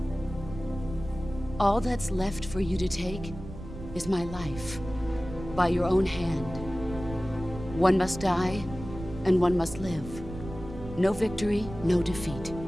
All that's left for you to take is my life, by your own hand. One must die, and one must live. No victory, no defeat.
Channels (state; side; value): noise; right; rumble, 12 dB below the sound